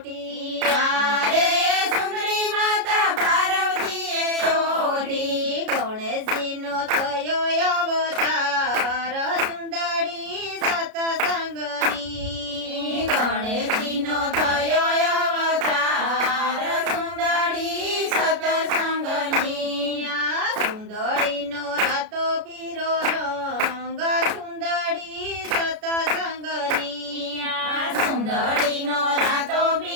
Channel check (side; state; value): left; late; 33 ms